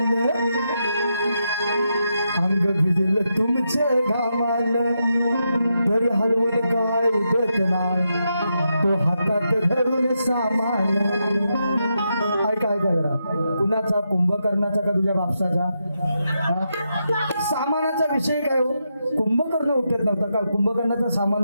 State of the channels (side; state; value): both; inverted; correlation -0.84